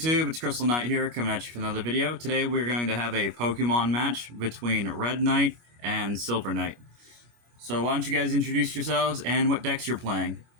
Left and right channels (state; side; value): late; left; 25 ms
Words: It's Crystal Knight here, coming at you for another video. Today we're going to have a Pokemon match between Red Knight and Silver Knight. So why don't you guys introduce yourselves and what decks you're playing?